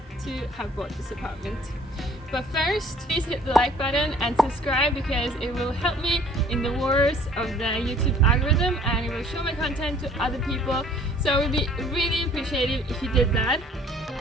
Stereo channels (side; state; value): both; normal; correlation 0.54